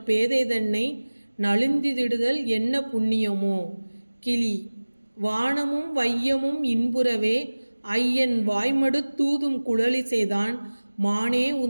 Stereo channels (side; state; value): both; inverted; correlation -1.00